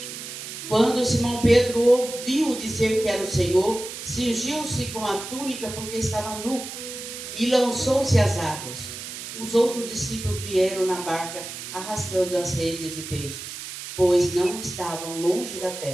Quando Simão Pedro ouviu dizer que era o Senhor, cingiu-se com a túnica porque estava nu e lançou-se às águas. Os outros discípulos vieram na barca arrastando as redes de peixes, pois não estavam longe da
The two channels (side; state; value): right; noise; hiss, 9 dB below the sound